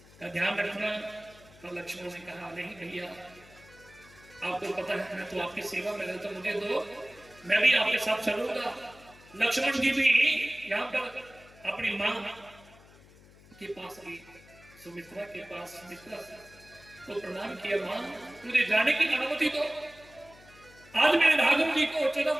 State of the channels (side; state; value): left; noise; hum, 24 dB below the sound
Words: का ध्यान रखना। और लक्ष्मण ने कहा नहीं भैया, आपको पता है मैं तो आपकी सेवा में रहता, मुझे दो, मैं भी आपके साथ चलूंगा। लक्ष्मण जी भी यहाँ पर अपनी माँ के पास गई, सुमित्रा के पास, सुमित्रा को प्रणाम किया, माँ मुझे जाने की अनुमति दो, आज मेरे राघव जी को 14